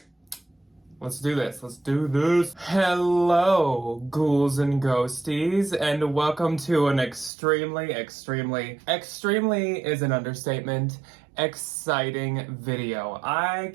Let's do this. Let's do this. Hello, ghouls and ghosties, and welcome to an extremely is an understatement, exciting video. I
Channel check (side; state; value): left; drops out; at 7.3 s